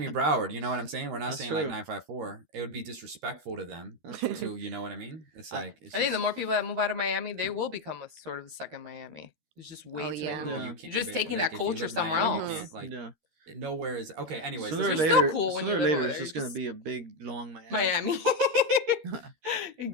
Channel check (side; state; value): left; late; 13 ms